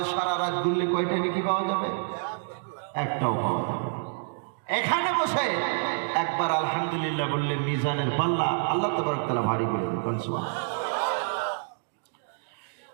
সারা রাত ঘুরলে কয়টা নেকি পাওয়া যাবে? একটাও পাওয়া যাবে। এখানে বসে একবার আলহামদুলিল্লাহ বললে মিজানের পাল্লা আল্লাহ তাবারক তাআলা ভারী করে দেন। সুবহানাল্লাহ,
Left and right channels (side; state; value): left; silent; digital silence